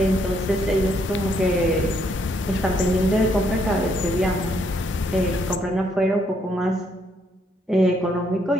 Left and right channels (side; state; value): both; normal; correlation 0.72